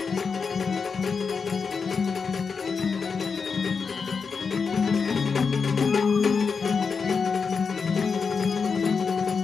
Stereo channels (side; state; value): right; quieter; 5.4 dB